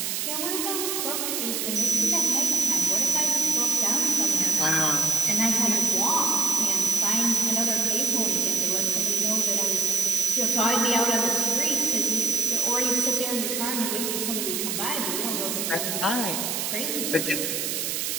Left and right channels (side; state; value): right; noise; hiss, 1 dB below the sound